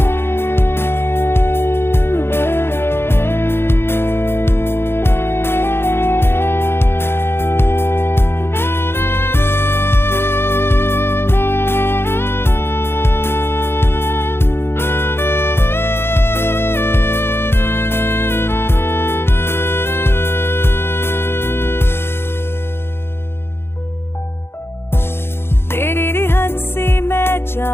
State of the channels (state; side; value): late; right; 0.11 ms